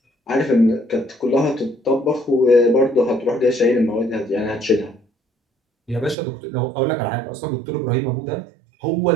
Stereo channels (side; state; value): left; drops out; at 6.2 s